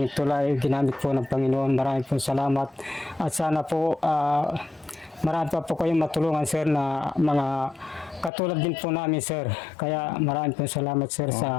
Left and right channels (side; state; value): right; drops out; at 8.3 s